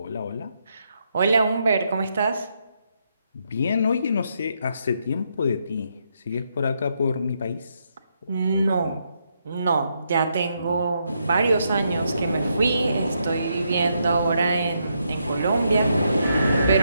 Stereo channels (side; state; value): both; inverted; correlation -0.79